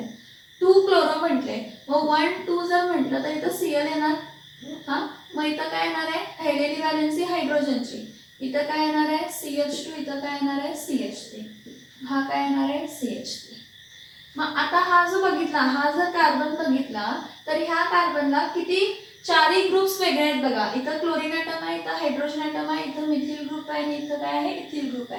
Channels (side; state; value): both; identical; correlation 1.00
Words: 2 क्लोरो म्हटले मग 1 2 जर म्हटलं तर इथं Cl येणार. हा मग इथं काय येणार आहे राहिलेली व्हॅलेन्सी हायड्रोजनची, इथं काय येणार आहे CH2, इथं काय येणार आहे CH3, हा काय येणार आहे CH3. मग आता हा जो बघितला, हा जर कार्बन बघितला तर ह्या कार्बनला किती चारही ग्रुप्स वेगळे आहेत बघा. इथं क्लोरीन ॲटम आहे, इथं हायड्रोजन ॲटम आहे, इथं मिथिल ग्रुप आहे आणि इथं काय आहे इथिल ग्रुप